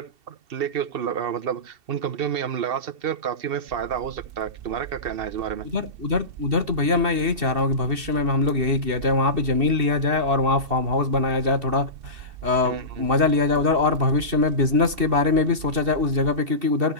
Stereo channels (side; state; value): left; late; 2.7 ms